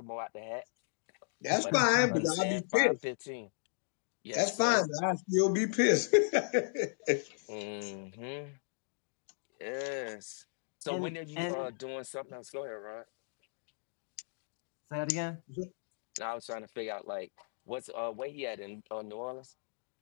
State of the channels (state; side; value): silent; right; digital silence